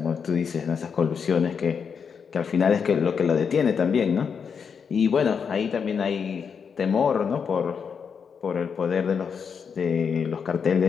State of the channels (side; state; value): right; quieter; 6.4 dB